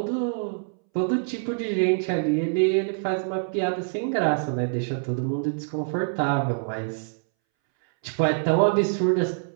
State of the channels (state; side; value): silent; left; 62 dB below the other